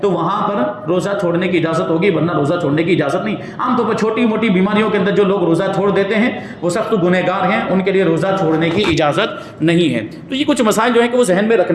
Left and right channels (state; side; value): identical; both; correlation 1.00